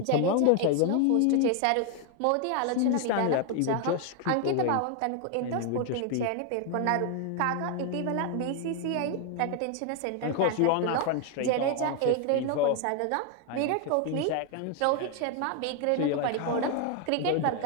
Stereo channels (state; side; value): different; both; correlation 0.01